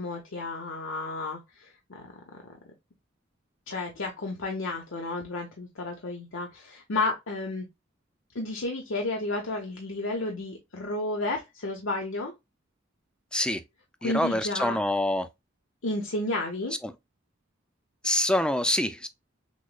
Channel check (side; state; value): both; normal; correlation 0.34